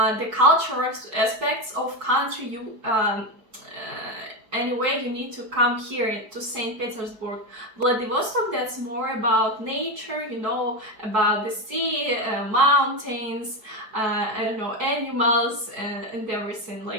cultural aspects of country, you anyway, you need to come here to St. Petersburg. Vladivostok, that's more about nature, you know, about the sea, mountains, I don't know, animals, and everything,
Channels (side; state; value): left; late; 4.7 ms